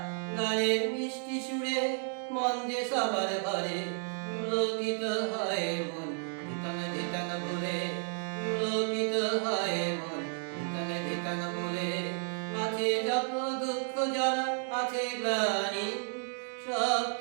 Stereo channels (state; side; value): silent; left; 55 dB below the other